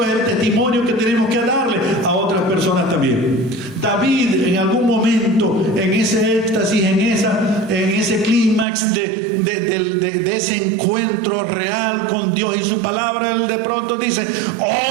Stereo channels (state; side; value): drops out; left; at 8.7 s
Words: es el testimonio que tenemos que darle a otras personas también. David, en algún momento, en ese éxtasis, en ese clímax de ese encuentro real con Dios y su palabra, él de pronto dice: